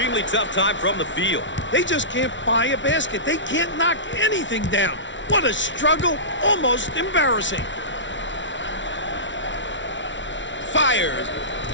tough time from the field. They just can't buy a basket. They can't knock anything down. What a struggle. Almost embarrassing. Fires.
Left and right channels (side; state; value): right; late; 0.55 ms